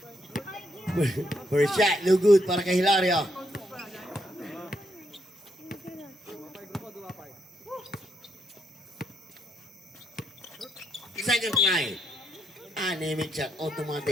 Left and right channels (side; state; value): both; normal; correlation 0.77